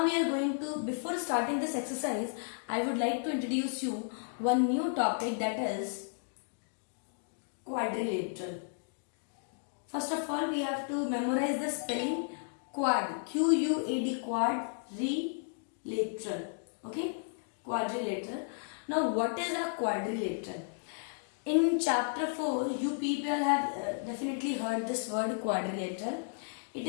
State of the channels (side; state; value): right; silent; digital silence